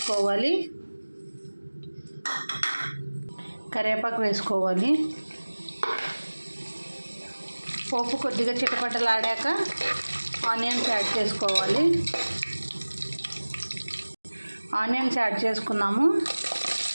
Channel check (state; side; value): inverted; both; correlation -1.00